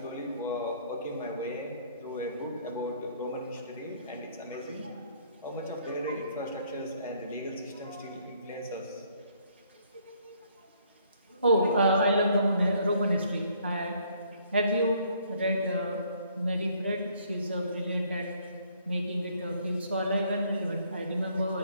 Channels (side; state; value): both; inverted; correlation -0.64